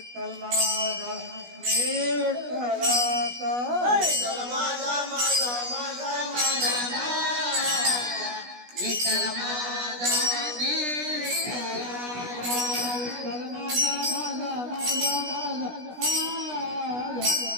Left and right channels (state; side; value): late; left; 16 ms